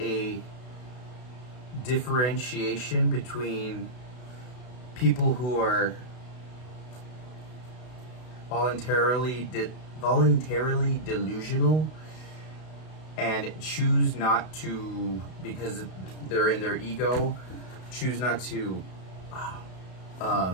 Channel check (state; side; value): late; right; 32 ms